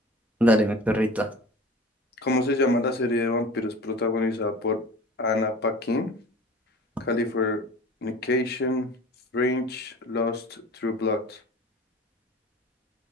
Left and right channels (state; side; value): normal; both; correlation 0.40